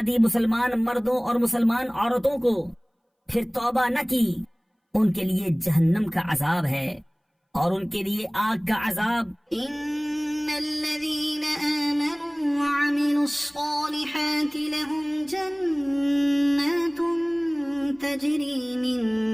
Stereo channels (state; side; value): identical; both; correlation 1.00